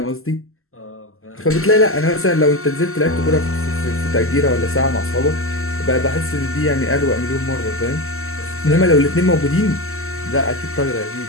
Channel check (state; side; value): late; right; 0.62 ms